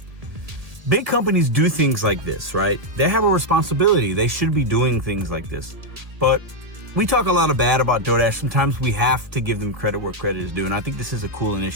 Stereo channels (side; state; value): left; late; 1.9 ms